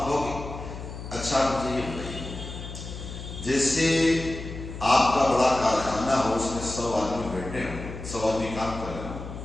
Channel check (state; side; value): noise; left; hum, 10 dB below the sound